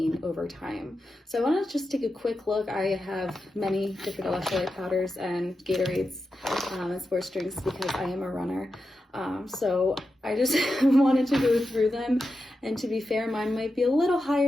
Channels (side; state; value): both; normal; correlation 0.89